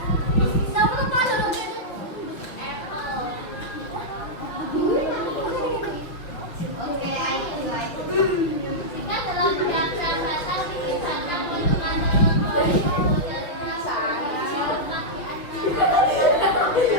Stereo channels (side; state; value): right; late; 6.1 ms